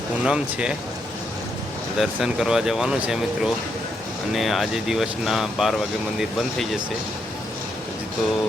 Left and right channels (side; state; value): both; normal; correlation 0.78